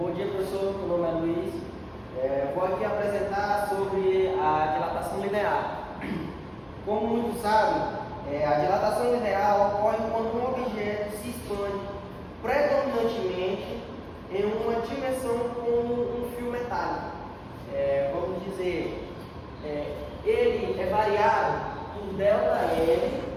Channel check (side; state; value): both; identical; correlation 1.00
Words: dia, professor. Meu nome é Luiz. Vou aqui apresentar sobre a dilatação linear. Como muitos sabem, a dilatação linear ocorre quando um objeto se expande predominantemente em uma dimensão com um fio metálico. Vamos dizer, ele é variável por ΔL